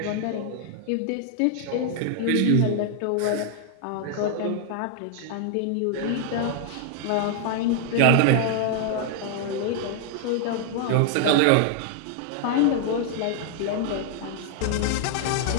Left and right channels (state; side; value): different; both; correlation 0.00